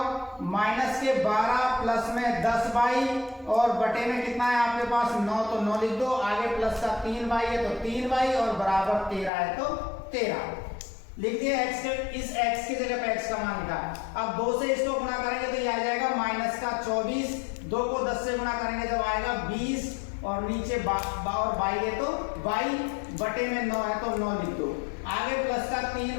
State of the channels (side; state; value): right; drops out; at 9.3 s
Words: -12 प्लस में 10 और बटे में कितना है आपके पास 9, तो 9 लिख दो, आगे प्लस का 3 है तो 3 और बराबर 13 है तो 13 लिख दिया। x के इस x की जगह पे x का मान लिखा। अब 2 से इसको गुणा करेंगे तो ये आ जाएगा -24, 2 को 10 से गुणा करेंगे जब आएगा 20 और नीचे और बाई है तो बाई बटे में 9 है तो 9 लिख दो, आगे प्लस का